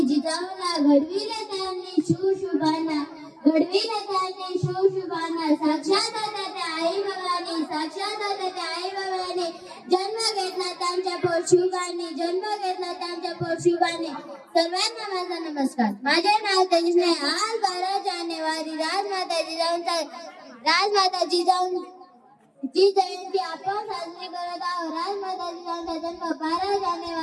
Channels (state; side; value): identical; both; correlation 1.00